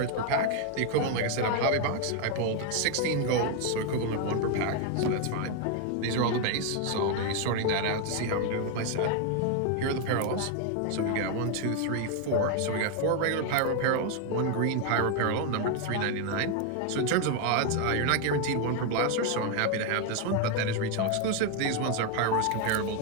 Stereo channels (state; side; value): different; both; correlation 0.01